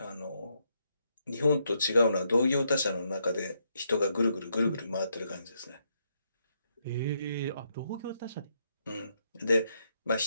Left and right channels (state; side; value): inverted; both; correlation -0.77